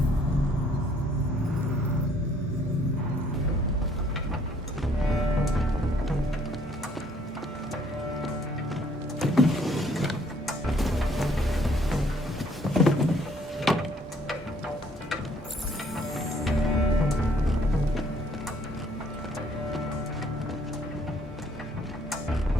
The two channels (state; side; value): normal; both; correlation 0.63